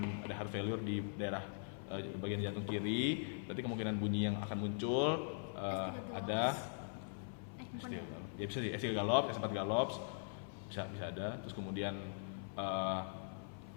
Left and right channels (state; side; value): silent; right; 50 dB below the other